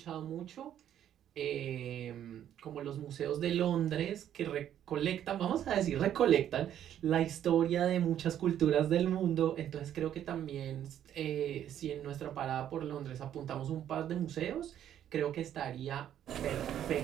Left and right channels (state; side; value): quieter; left; 10.6 dB